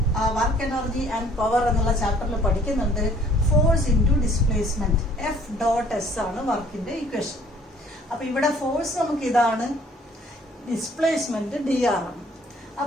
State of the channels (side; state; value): both; normal; correlation 0.58